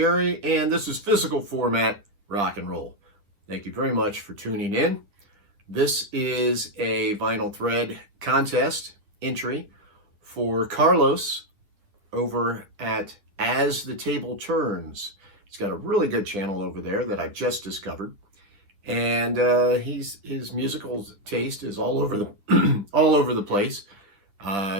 and this is physical format rock and roll. Thank you very much for tuning in. This is a vinyl thread contest entry for Carlos over at As the Table Turns. He's got a really good channel over there that I've just discovered, and his musical taste is all over the all over the place.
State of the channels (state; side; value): late; left; 10 ms